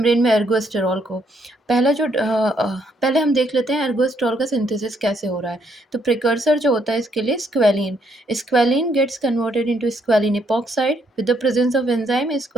में एर्गोस्टेरॉल को. पहले हम देख लेते हैं एर्गोस्टेरॉल का सिंथेसिस कैसे हो रहा है. तो प्रिकर्सर जो होता है इसके लिए squalene. Squalene gets converted into squalene epoxide with the presence of enzyme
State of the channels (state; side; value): normal; both; correlation 0.72